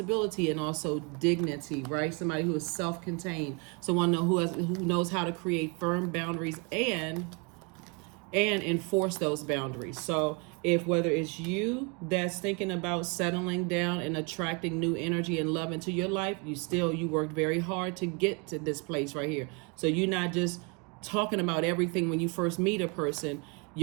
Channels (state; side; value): quieter; left; 32.0 dB